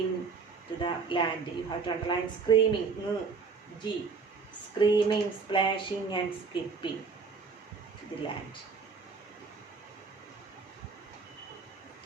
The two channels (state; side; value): quieter; left; 5.0 dB